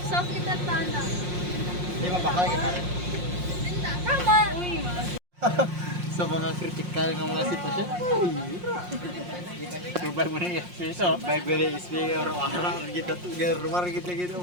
Soft kita tana. Di ba bakal kita? Tama. Sa mga critical ng mga sitwasyon. Subay mo na yung piso. Bible is big or wara kita tu. Rumah kita gitu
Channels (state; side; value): late; left; 5.6 ms